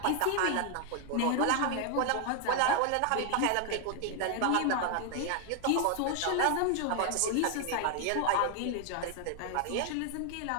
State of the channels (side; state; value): both; different; correlation 0.00